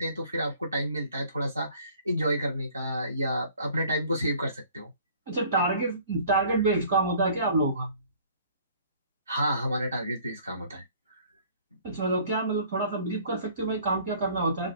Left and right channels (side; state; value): both; inverted; correlation -0.54